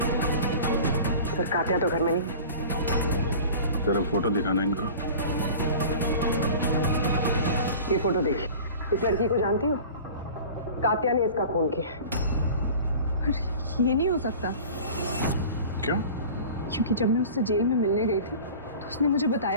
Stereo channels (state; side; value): inverted; both; correlation -0.40